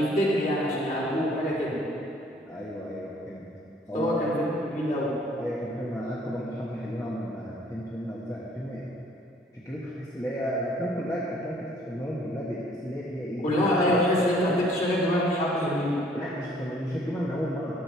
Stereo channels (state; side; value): normal; both; correlation 0.60